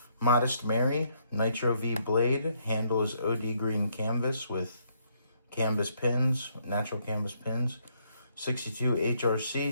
Modest Mary, Nitro V blade. Handle is OD green canvas with canvas pins, natural canvas pins. 62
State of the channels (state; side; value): inverted; both; correlation -0.72